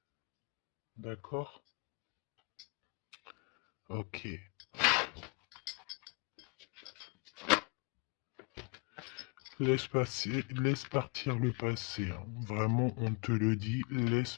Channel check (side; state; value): right; quieter; 32.1 dB